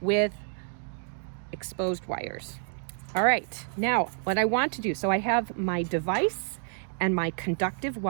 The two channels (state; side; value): silent; left; digital silence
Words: exposed wires. All right, now what I want to do, so I have my device and my conductive